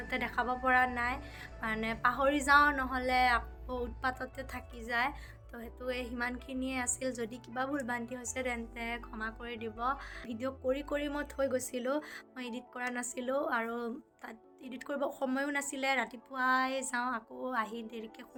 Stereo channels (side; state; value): both; identical; correlation 1.00